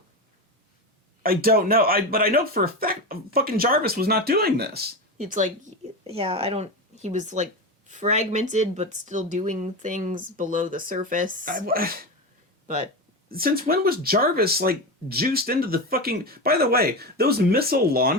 I don't know. But I know for a fact fucking Jarvis was not doing this. It's like, he was, like, fragmented, but still doing things below the surface. But... Since when was Jarvis, like, juiced into the fucking... By the way, those missile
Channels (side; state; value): both; normal; correlation 0.19